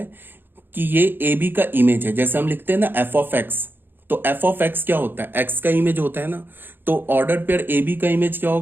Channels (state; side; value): late; left; 0.099 ms